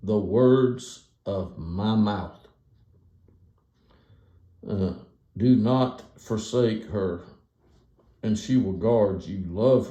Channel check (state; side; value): identical; both; correlation 1.00